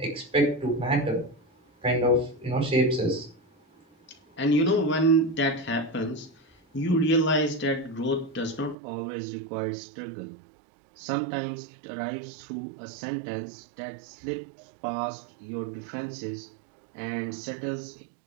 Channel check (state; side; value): drops out; left; at 8.8 s